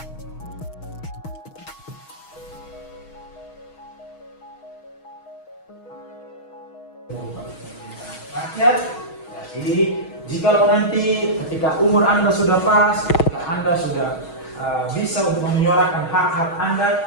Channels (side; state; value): right; late; 6.3 ms